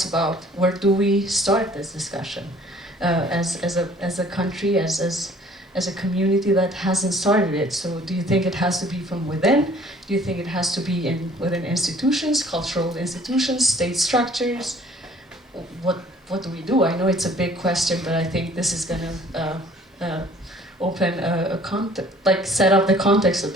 about where do we start this discussion as a country, as as a community that hasn't started it. So do you think it has to be from within? Do you think it has to be within institutions, cultural institutions, state structures? What do we do? I know it's a big question, but I think this is going to open set up the context a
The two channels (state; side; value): normal; both; correlation 0.55